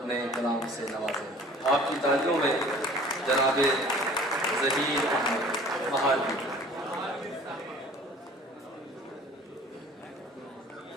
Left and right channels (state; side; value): normal; both; correlation 0.48